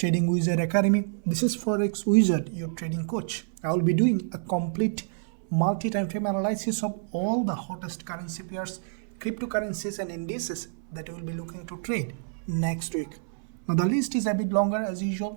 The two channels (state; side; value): silent; left; 59 dB below the other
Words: Wizard Academy. This is Forex Wizard, your trading coach. I will be doing a complete multi-time frame analysis of all the hottest currency pairs, cryptocurrencies and indices that we will be looking to trade next week. Now the list is a bit longer as